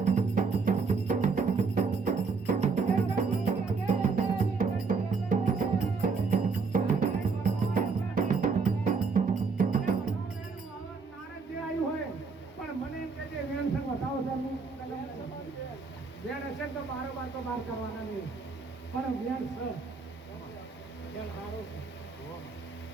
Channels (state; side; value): quieter; left; 4.8 dB